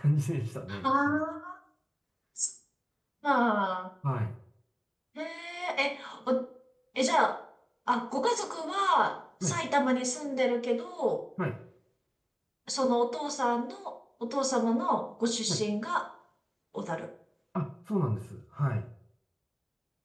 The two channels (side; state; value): both; identical; correlation 1.00